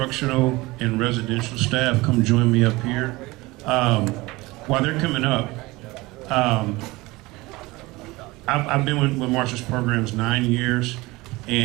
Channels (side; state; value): left; quieter; 21.5 dB